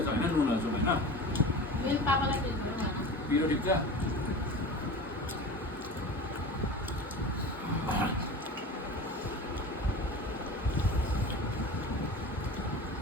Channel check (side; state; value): both; normal; correlation 0.34